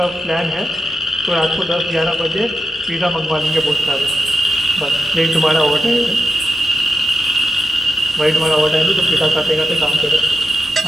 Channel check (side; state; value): both; normal; correlation 0.87